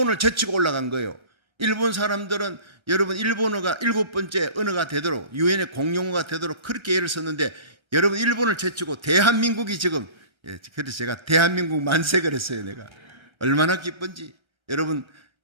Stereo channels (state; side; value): late; left; 1.3 ms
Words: 제치고 올라간 거예요. 일본 사람들은 여러분 일본어가 7번째 언어가 되도록 유엔의 공용어가 되도록 그렇게 애를 썼는데 여러분 일본을 제치고 대한민국이 지금 그래서 제가 대한민국 만세 그랬어요. 내가 얼마나 기쁜지. 여러분